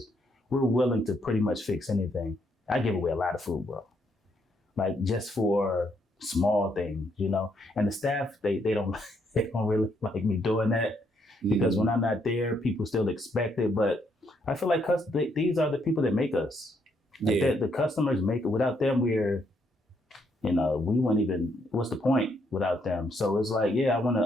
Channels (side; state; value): both; normal; correlation 0.74